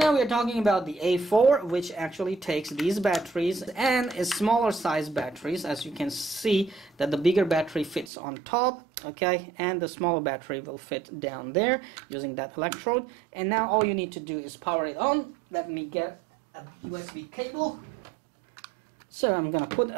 we are talking about the A4, which actually takes these batteries and is smaller size batteries. As you can see that the bigger battery fits on top, okay, and the smaller battery will fit down there using that electrode. And now all you need to do is power it on. Let me get a USB cable. So I'm gonna put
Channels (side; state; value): left; drops out; at 8.1 s